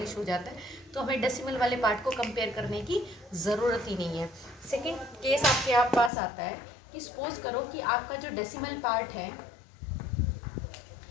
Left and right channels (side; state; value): right; drops out; at 6.1 s